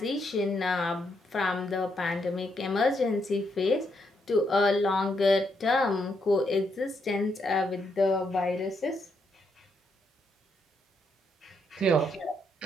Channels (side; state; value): both; normal; correlation 0.78